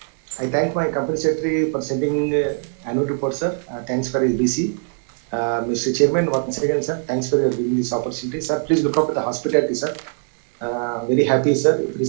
I thank my company secretary for sending annual report, sir. Thanks for his VC. Mr. Chairman, once again, sir, thanks for giving this opportunity. Sir, please look up with the hospitality, sir. Very happy, sir.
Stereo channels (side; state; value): left; silent; digital silence